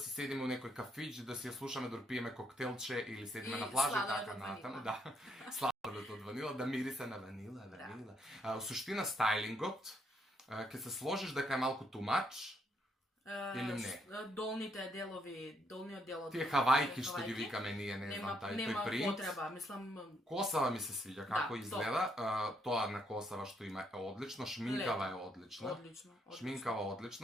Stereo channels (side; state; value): both; normal; correlation 0.74